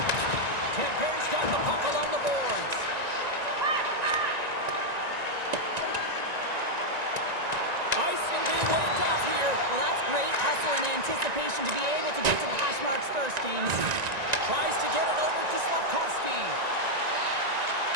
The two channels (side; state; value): left; late; 1.9 ms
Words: Camper's got the puck along the boards. Icing being waved off here. Well, that's great hustle and anticipation to be able to get to the hash marks first, James. Tries to get it over to Slavkovsky.